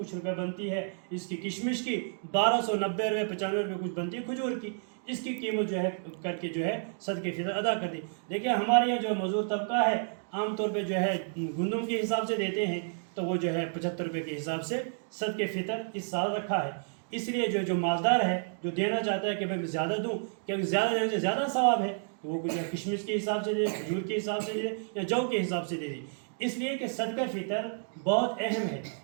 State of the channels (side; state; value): left; silent; digital silence